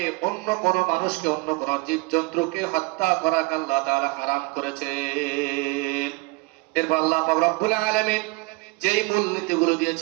অন্য কোন মানুষকে, অন্য কোন জীবজন্তুকে হত্যা করাকে আল্লাহ তাআলা হারাম করেছেন। এরপর আল্লাহ পাক রব্বুল আলামিন যেই মূলনীতিগুলো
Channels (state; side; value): quieter; left; 26.2 dB